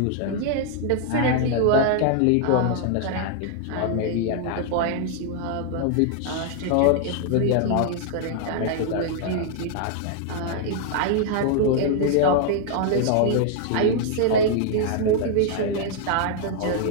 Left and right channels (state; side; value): different; both; correlation 0.00